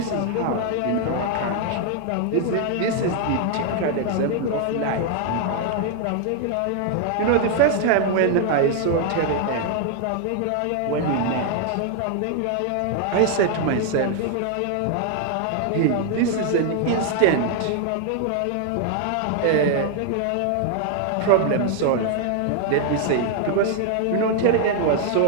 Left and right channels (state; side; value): different; both; correlation 0.00